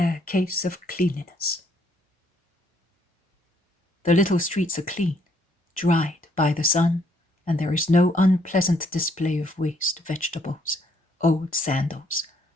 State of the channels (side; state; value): both; normal; correlation 0.68